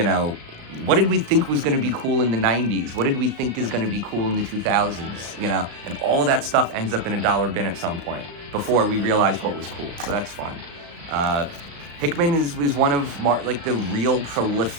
know, what did we think was going to be cool in the 90s? What did we think is going to be cool in the 2000s? You know, and all of that stuff ends up in a dollar bin at some point before we realize what was cool. So that's fun. Hickman is one of the real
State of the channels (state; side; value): late; left; 35 ms